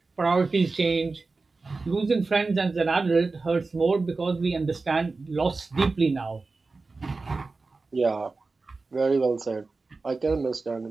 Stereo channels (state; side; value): quieter; left; 3.8 dB